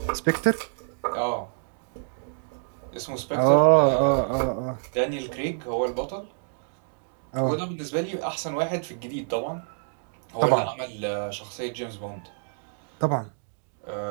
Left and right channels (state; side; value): silent; left; digital silence